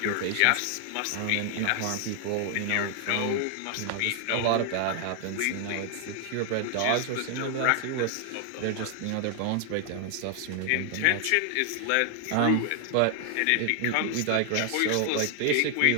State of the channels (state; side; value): different; both; correlation 0.00